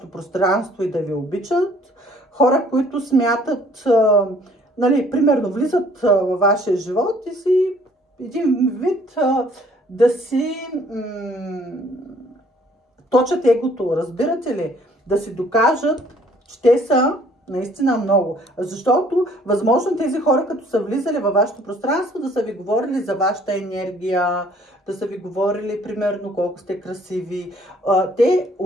пространство и да ви обичат. Хора, които смятат, нали, примерно влизат във вашия живот и си един вид да си точат егото, разбирате ли? Да си докажат, че те са наистина много. Защото, възможно тези хора, като са влизали във вашето пространство, да са ви говорили за вашата енергия, да са ви говорили, примерно, колко сте красиви. Те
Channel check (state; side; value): normal; both; correlation 0.59